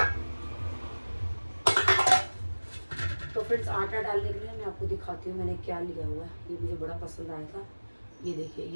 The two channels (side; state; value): both; inverted; correlation -1.00